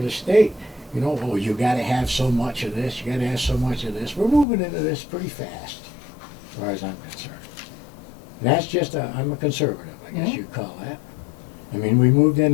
the state, you know, oh, you gotta have so much of this, you gotta have so much of this. We're moving into this pretty fast, as far as I'm concerned. And that's just I'm a conservative, I guess you'd call that. I mean, we moved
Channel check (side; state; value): right; drops out; at 4.5 s